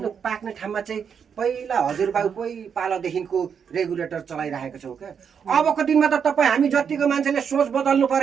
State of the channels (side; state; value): left; quieter; 7.1 dB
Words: पाक्ने ठाउँमा चाहिँ पहिला हजुरबाउकै पालादेखिको रेगुलेटर चलाइरहेको छौँ क्या अबको दिनमा त तपाईँ हामी जतिको मान्छेले सोच बदल्नु